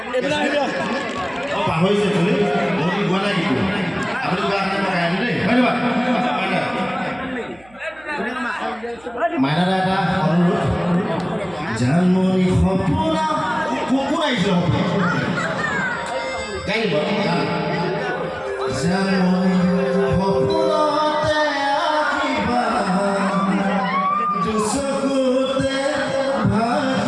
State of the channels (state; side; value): noise; right; hum, 28 dB below the sound